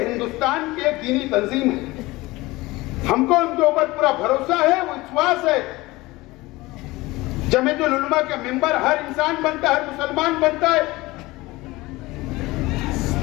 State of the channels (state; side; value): quieter; right; 20.5 dB